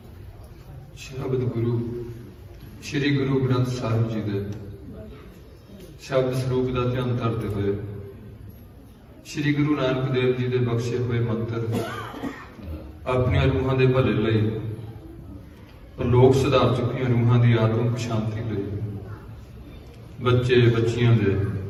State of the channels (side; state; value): both; identical; correlation 1.00